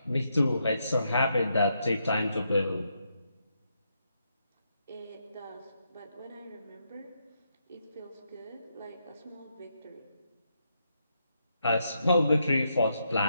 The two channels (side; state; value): both; inverted; correlation -0.80